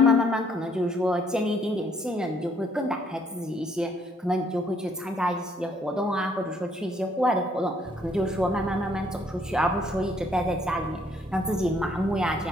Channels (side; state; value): both; normal; correlation 0.66